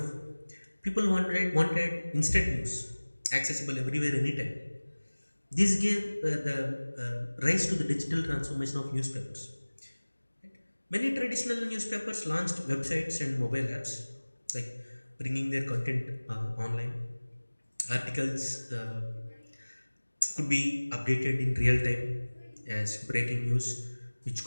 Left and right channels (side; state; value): both; inverted; correlation -1.00